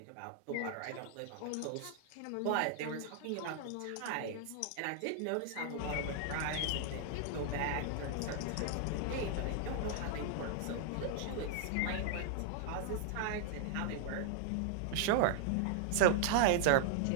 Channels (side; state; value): both; different; correlation -0.01